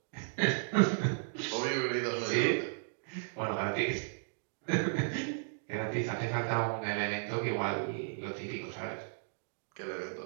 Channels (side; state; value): left; silent; digital silence